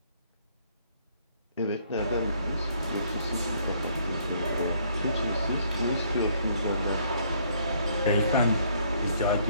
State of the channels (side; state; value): both; inverted; correlation -0.65